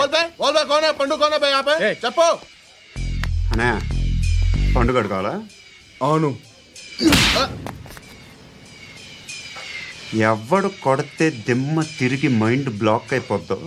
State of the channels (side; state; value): both; identical; correlation 1.00